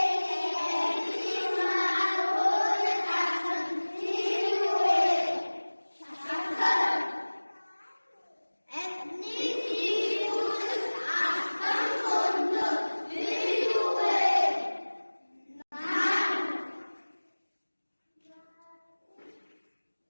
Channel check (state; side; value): inverted; both; correlation -1.00